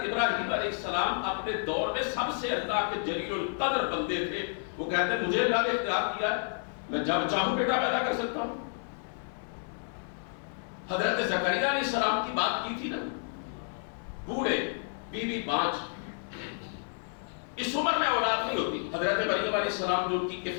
ابراہیم علیہ السلام اپنے دور میں سب سے اللہ کے جلیل القدر بندے تھے، وہ کہتے ہیں مجھے اللہ نے اختیار دیا ہے، میں جب چاہوں بیٹا پیدا کر سکتا ہوں۔ حضرت زکریا علیہ السلام کی بات کی تھی نا، بوڑھے، بیوی بانجھ، اس عمر میں اولاد نہیں ہوتی۔ حضرت مریم علیہ السلام جو ان کی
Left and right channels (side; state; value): right; silent; 57 dB below the other